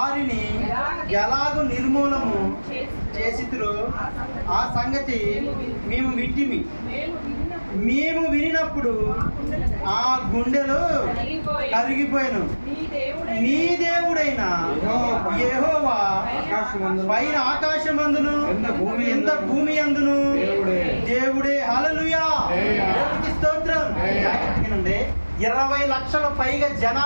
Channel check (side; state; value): both; inverted; correlation -1.00